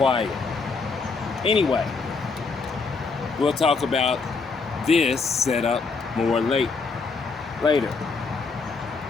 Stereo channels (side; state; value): right; quieter; 4.5 dB